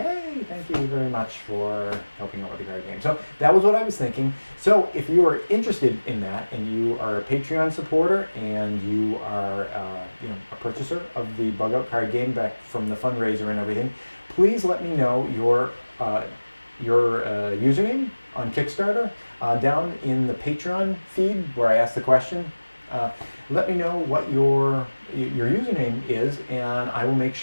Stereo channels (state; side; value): inverted; both; correlation -1.00